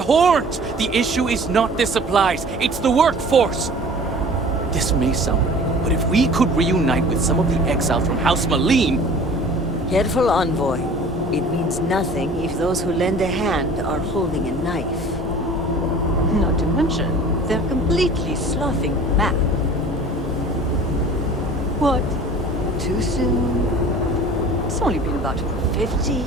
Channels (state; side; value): normal; both; correlation 0.44